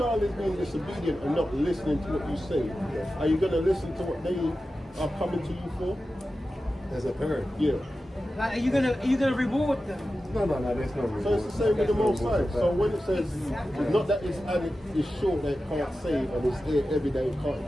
is being disobedient and not listening to what you say, are you going to listen to what they are coming to you for? As a parent. Yeah. Like, are you gonna reward them? No, there's no reward. So it's the same with the Most High. So when it says, it's not that it's short that it can't save and it's there every day it can't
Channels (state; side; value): normal; both; correlation 0.93